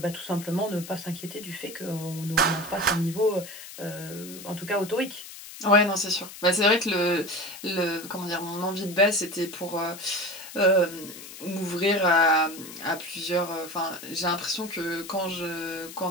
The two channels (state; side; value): noise; left; hiss, 14 dB below the sound